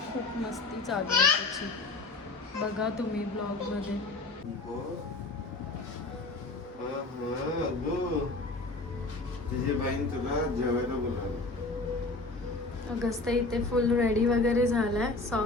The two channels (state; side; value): quieter; right; 3.3 dB